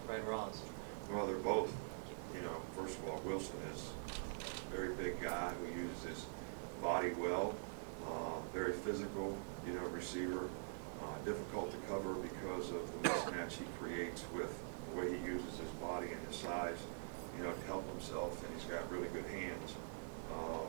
Fred Ross? Well, they're both, you know, first of all, Wilson is a very big guy who uses his body well, very physical, you know, receiver, difficult to cover because of the mismatch he creates with the way he uses his body and his size, you know, to help himself, and he's got really good hands.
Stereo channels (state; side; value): silent; left; digital silence